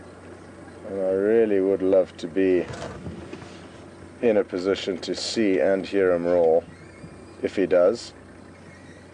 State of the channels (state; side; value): identical; both; correlation 1.00